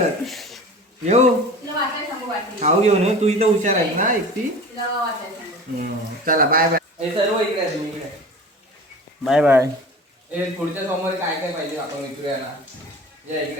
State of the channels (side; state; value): both; normal; correlation 0.38